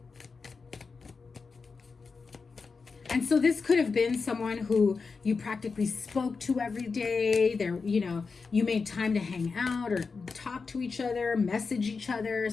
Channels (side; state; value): right; quieter; 4.7 dB